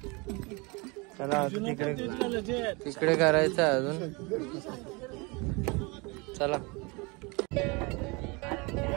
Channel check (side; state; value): left; quieter; 27.9 dB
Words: चला तिकडे करायचं अजून। चला